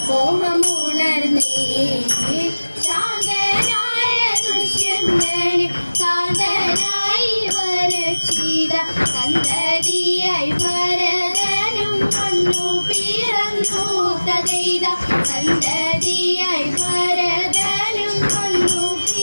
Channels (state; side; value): inverted; both; correlation -1.00